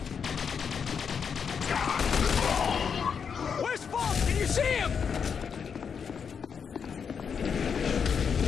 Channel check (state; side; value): quieter; right; 6.6 dB